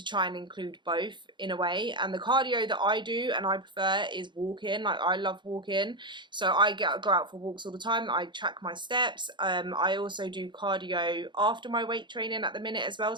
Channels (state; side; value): late; left; 0.23 ms